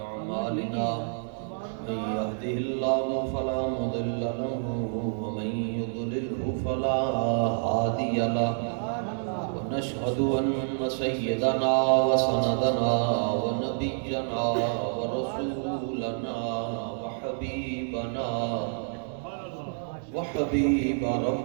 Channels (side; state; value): left; silent; digital silence